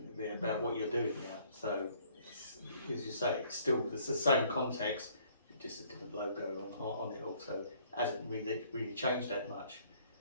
about what you're doing now. So, as you say, it's the same context, just a different logo on it all, so it hasn't really changed that much.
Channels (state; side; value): inverted; both; correlation -0.61